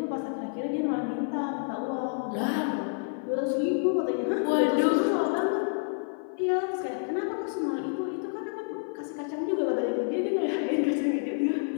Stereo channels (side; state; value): right; silent; 55 dB below the other